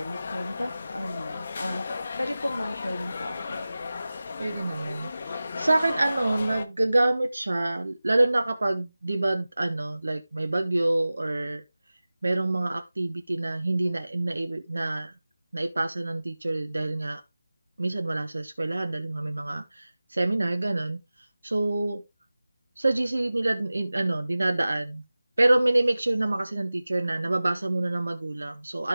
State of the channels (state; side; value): inverted; both; correlation -0.97